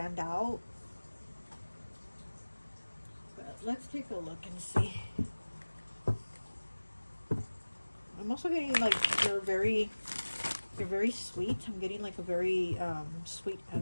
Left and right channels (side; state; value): both; inverted; correlation -1.00